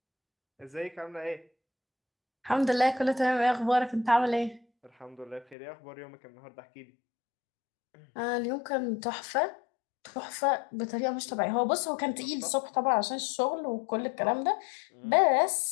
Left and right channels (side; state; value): right; drops out; at 5.6 s